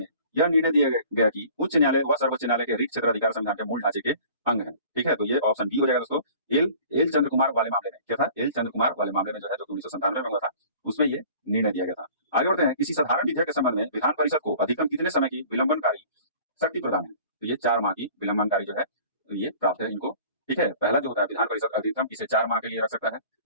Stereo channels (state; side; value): inverted; both; correlation -0.47